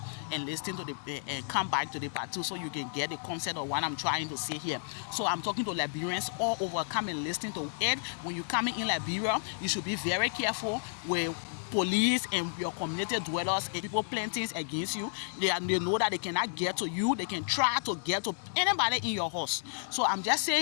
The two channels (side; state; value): right; silent; digital silence